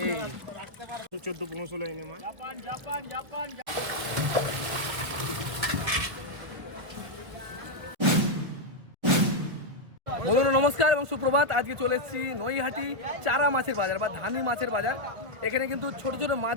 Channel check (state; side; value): late; left; 1.3 ms